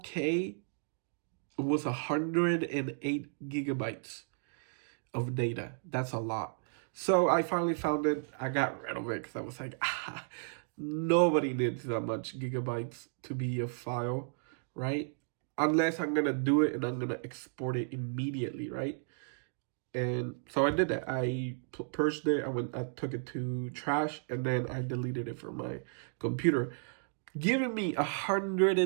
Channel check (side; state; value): left; silent; digital silence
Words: was 108 gigabytes of data. That's a lot. So I finally found it. I got rid of it because I was like, nobody needs that much gigabytes to be a file, right? Unless I'm going to do it and I'm going to export it immediately, right? And so I did that. I purged it. I took it to trash, and then I deleted it from my computer, giving me